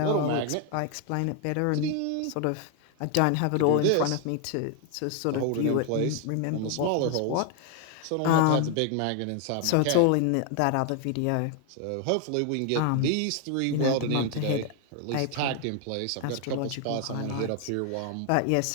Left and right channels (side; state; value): both; different; correlation 0.00